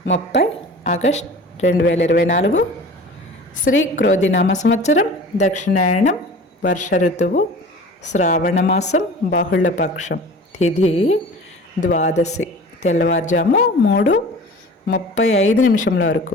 30 ఆగస్ట్ 2024. శ్రీ క్రోధినామ సంవత్సరం, దక్షిణాయనం, వర్ష ఋతువు, శ్రావణ మాసం, బహుళపక్షం, తిథి ద్వాదశి, తెల్లవారుజాము 3:35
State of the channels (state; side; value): normal; both; correlation 0.40